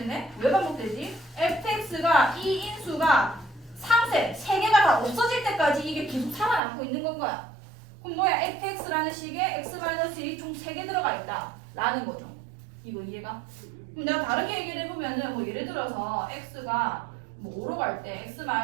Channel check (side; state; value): left; drops out; at 6.6 s